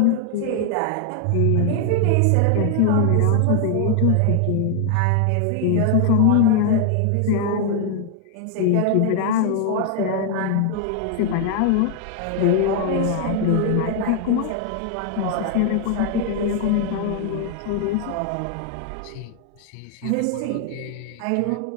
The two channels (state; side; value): different; both; correlation 0.00